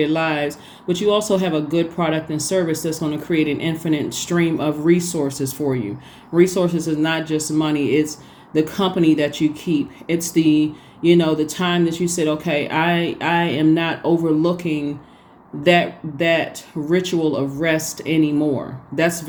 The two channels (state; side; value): identical; both; correlation 1.00